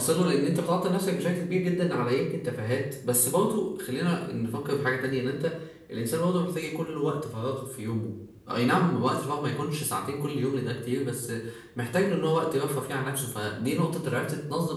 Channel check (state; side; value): identical; both; correlation 1.00